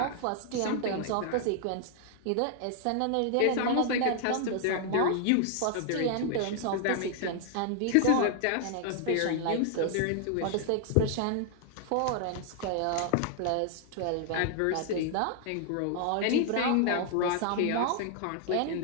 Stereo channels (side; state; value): both; different; correlation 0.00